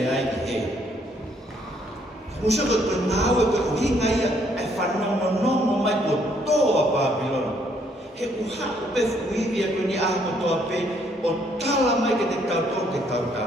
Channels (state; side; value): normal; both; correlation 0.68